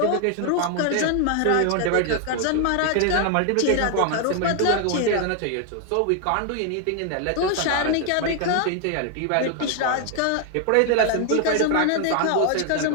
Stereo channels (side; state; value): both; different; correlation 0.00